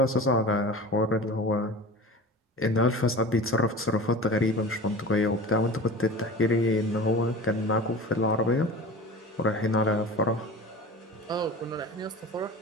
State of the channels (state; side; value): normal; both; correlation 0.35